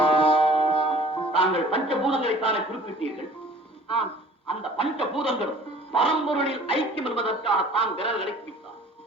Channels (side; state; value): both; normal; correlation 0.49